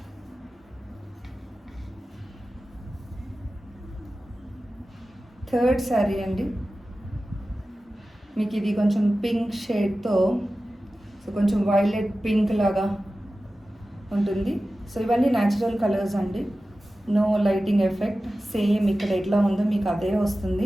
Third sari అండి. మీకు ఇది కొంచెం పింక్ షేడ్తో సో కొంచెం వైలెట్ పింక్ లాగా ఉంటుంది. సో ఇవన్నీ న్యాచురల్ కలర్స్ అండి, నో లైటింగ్ ఎఫెక్ట్. సేమ్ ఇక్కడ ఎట్లా ఉందో మీకు అదే వస్తుంది.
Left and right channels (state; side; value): normal; both; correlation 0.95